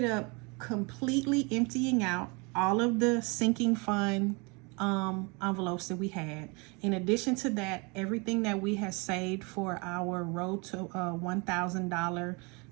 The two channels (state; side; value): quieter; left; 29.7 dB